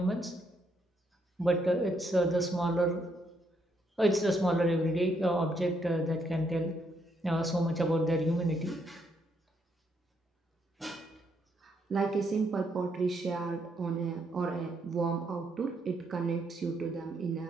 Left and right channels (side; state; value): both; normal; correlation 0.75